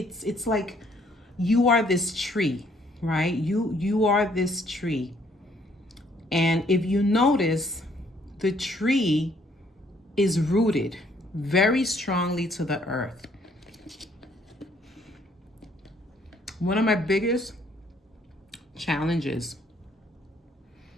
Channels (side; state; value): both; normal; correlation 0.65